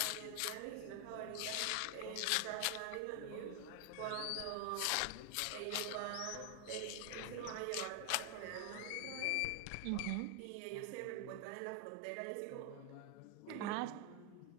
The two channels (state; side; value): different; both; correlation 0.00